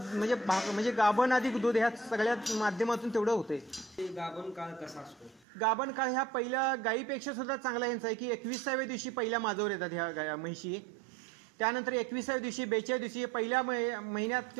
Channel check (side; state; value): left; drops out; at 5.5 s